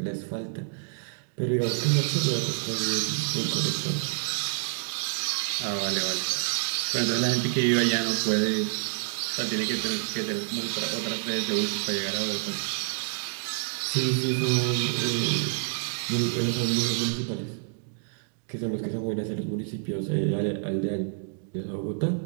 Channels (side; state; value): left; silent; digital silence